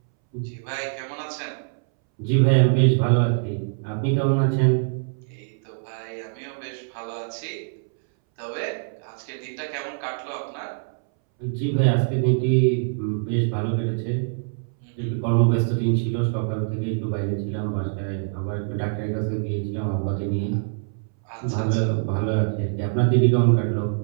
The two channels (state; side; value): silent; left; 62 dB below the other